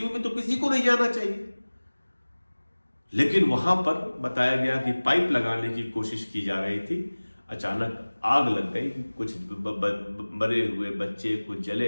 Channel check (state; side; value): inverted; both; correlation -1.00